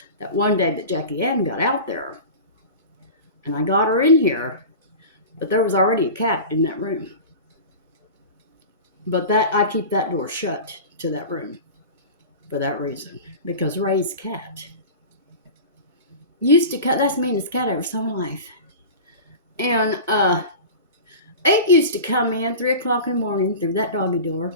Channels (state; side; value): inverted; both; correlation -0.33